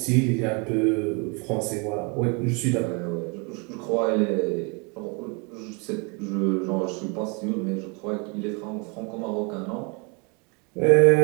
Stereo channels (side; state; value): left; quieter; 32.5 dB